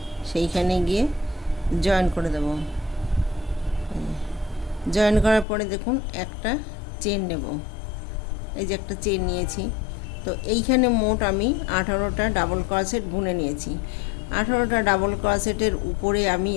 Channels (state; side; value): drops out; right; at 5.5 s